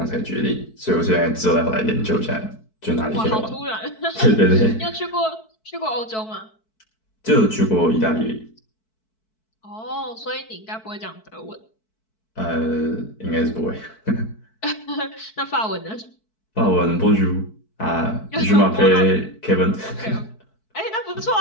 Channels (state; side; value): late; right; 4.6 ms